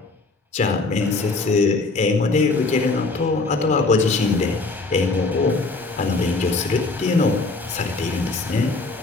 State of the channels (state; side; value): quieter; right; 3.6 dB